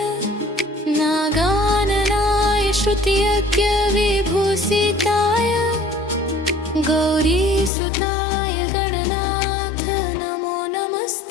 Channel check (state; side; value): drops out; right; at 7.7 s